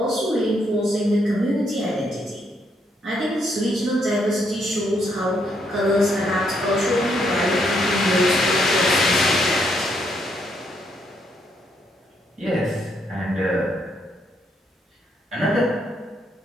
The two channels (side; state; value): both; normal; correlation 0.74